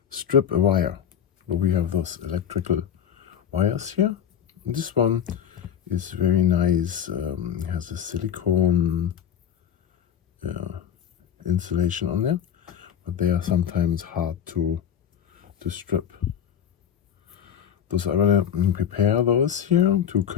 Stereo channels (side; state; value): right; quieter; 8.9 dB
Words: strip a wire? Well, we have those electrical wires here. This one is very nice. It has a silicone insulation on there, but they are sometimes hard to strip. So I'm gonna prepare those here to